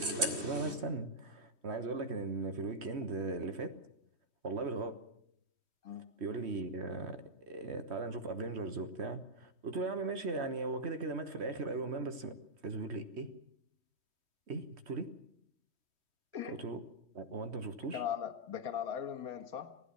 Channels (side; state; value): left; late; 3.1 ms